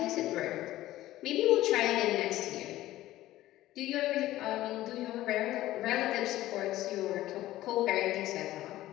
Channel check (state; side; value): quieter; right; 15.3 dB